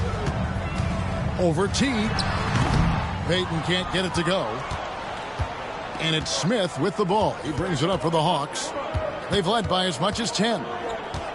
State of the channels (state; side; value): identical; both; correlation 1.00